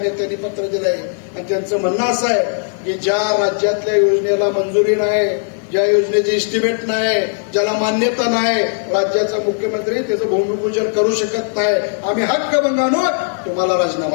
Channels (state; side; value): silent; right; digital silence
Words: नेत्यांनी पत्र दिलंय आणि त्यांचं म्हणणं असं आहे की ज्या राज्यातल्या योजनेला मंजुरी नाही, ज्या योजनेचे इस्टिमेट नाही, ज्याला मान्यता नाही, राज्याचा मुख्यमंत्री त्याचं भूमिपूजन करू शकत नाही. आम्ही हक्कभंगानं तुम्हाला